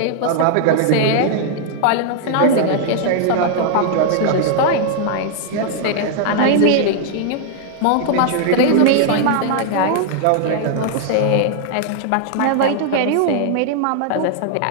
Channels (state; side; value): different; both; correlation -0.01